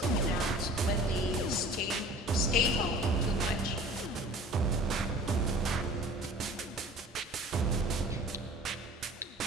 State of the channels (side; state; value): both; normal; correlation 0.45